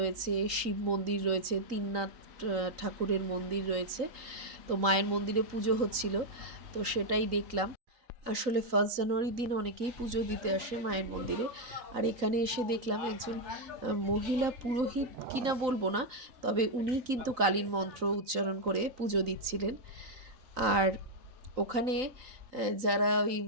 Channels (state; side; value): late; left; 3.9 ms